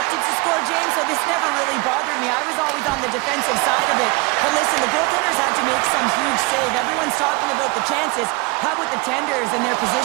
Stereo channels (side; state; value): left; quieter; 25.5 dB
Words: to score, James, so this never really bothered me. I was always on the defensive side of it. But listen, the goaltenders had to make some huge save. Everyone's talking about the chances. How about the tenders and their